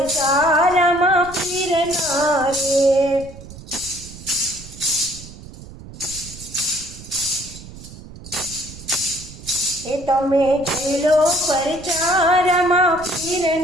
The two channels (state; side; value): noise; right; rumble, 16 dB below the sound